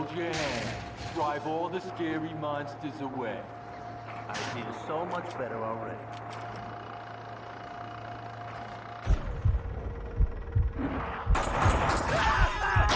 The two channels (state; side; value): identical; both; correlation 1.00